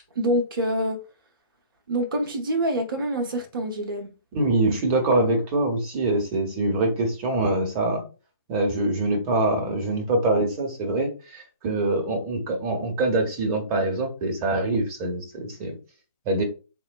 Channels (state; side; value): inverted; both; correlation -0.44